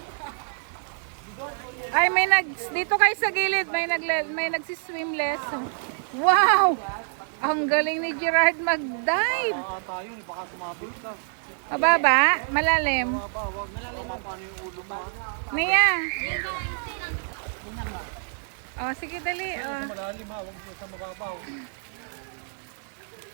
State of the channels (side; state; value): left; silent; digital silence